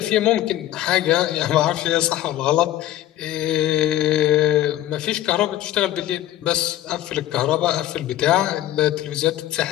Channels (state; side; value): quieter; right; 13.3 dB